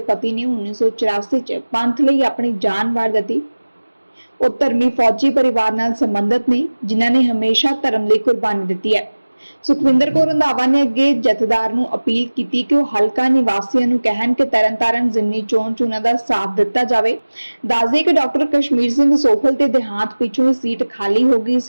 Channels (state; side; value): inverted; both; correlation -1.00